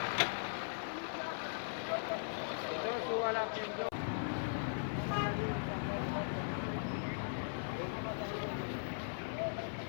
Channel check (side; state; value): right; silent; 51 dB below the other